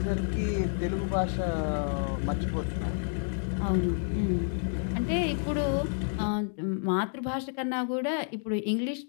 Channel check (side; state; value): right; silent; digital silence